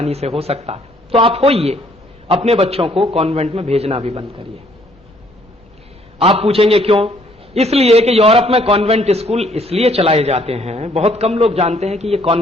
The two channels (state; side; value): normal; both; correlation 0.64